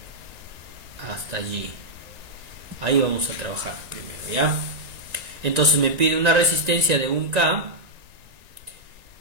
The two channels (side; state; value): left; late; 1.9 ms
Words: hasta allí. Ahí vamos a trabajar primero, ¿ya? Entonces me pide una resistencia de 1K,